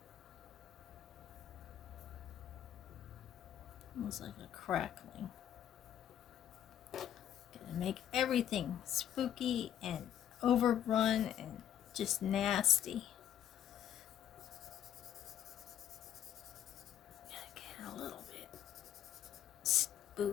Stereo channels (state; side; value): quieter; right; 10.4 dB